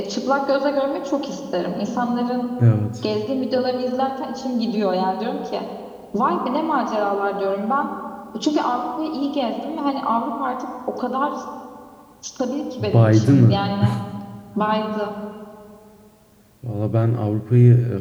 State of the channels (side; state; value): both; identical; correlation 1.00